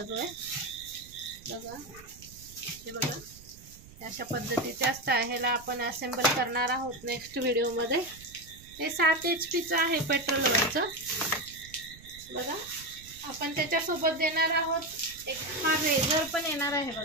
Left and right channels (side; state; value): right; noise; rumble, 20 dB below the sound